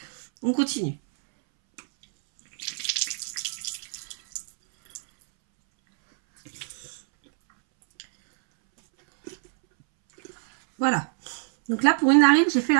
On continue. Voilà. Donc là pour une narine j'ai fait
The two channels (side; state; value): left; silent; 62 dB below the other